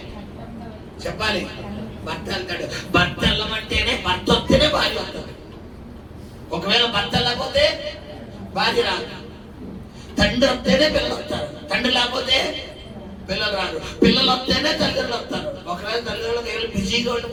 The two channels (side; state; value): both; identical; correlation 1.00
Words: చెప్పాలి భర్త వెళ్తాడు. భర్త వెళ్ళమంటేనే భర్త వస్తేనే భార్య వస్తుంది. ఒకవేళ భర్త లేకపోతే భార్య రాదు. తండ్రి వస్తేనే పిల్లలు వస్తారు. తండ్రి లేకపోతే పిల్లలు రారు. పిల్లలు వస్తేనే తల్లిదండ్రులు వస్తారు. ఒకవేళ తల్లిదండ్రులు బిజీగా ఉండి